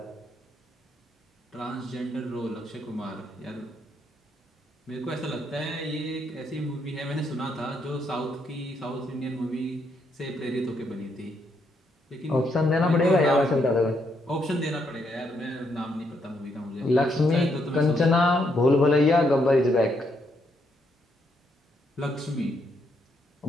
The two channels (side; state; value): both; normal; correlation 0.76